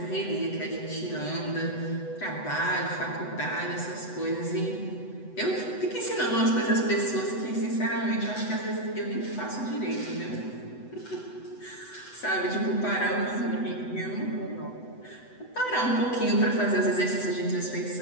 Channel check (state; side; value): late; right; 8.0 ms